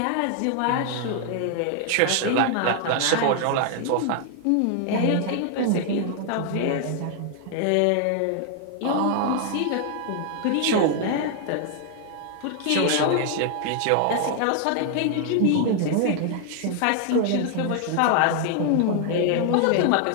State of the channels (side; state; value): both; different; correlation 0.00